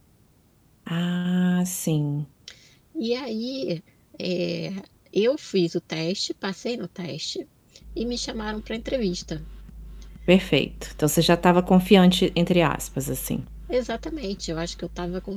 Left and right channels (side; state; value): both; identical; correlation 1.00